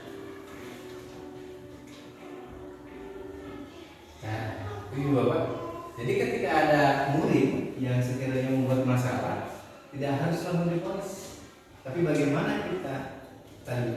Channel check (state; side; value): identical; both; correlation 1.00